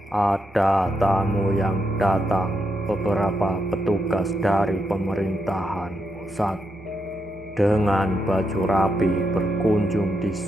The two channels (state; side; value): normal; both; correlation 0.82